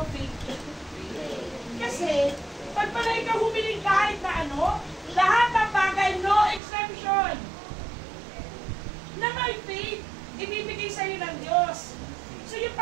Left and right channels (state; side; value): drops out; left; at 6.6 s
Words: faith. Kasi, pag pala ikaw humiling kahit na ano, lahat ng bagay, no exception, na may faith, ibibigay sa'yo ng Diyos. So yung